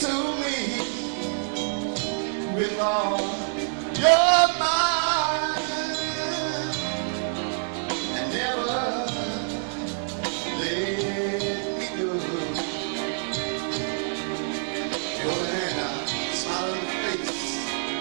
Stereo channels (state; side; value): silent; left; digital silence